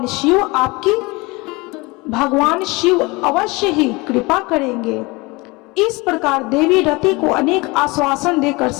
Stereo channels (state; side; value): quieter; right; 24.7 dB